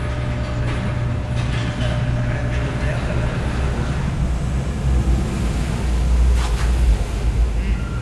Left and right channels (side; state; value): both; identical; correlation 1.00